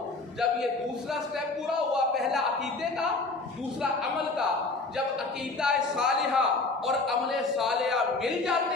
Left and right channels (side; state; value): right; quieter; 3.5 dB